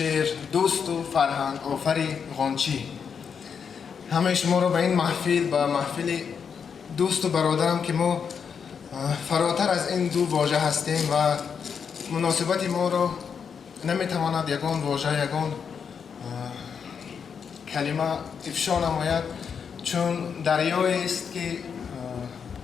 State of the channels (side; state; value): right; quieter; 6.7 dB